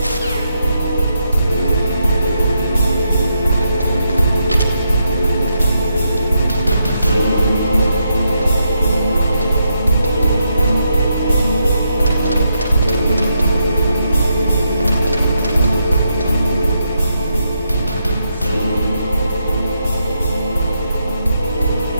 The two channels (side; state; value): both; inverted; correlation -0.80